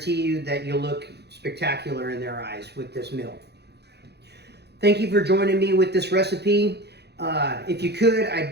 you that you'll look spectacular in their eyes with this meal. Thank you for joining me with this recipe. If you could,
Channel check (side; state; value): left; late; 0.48 ms